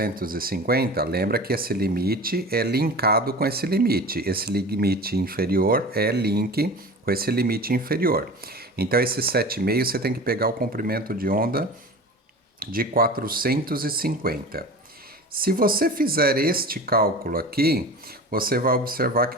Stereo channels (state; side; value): normal; both; correlation 0.35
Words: lembra que esse limite é linkado com esse limite.Esse limite inferior é link com esse limite inferior. Então, esse 7,5 você tem que pegar o comprimento de onda de 450. Se você fizer este cálculo aqui, você vai observar